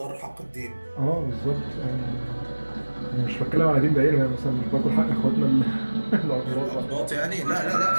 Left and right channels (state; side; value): inverted; both; correlation -1.00